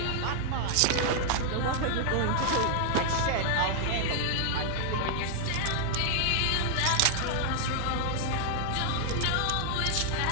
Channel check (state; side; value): different; both; correlation 0.00